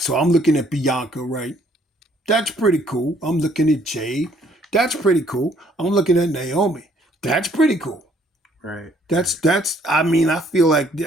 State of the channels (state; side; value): normal; both; correlation 0.63